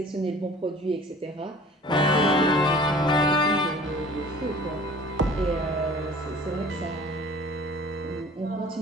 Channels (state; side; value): normal; both; correlation 0.47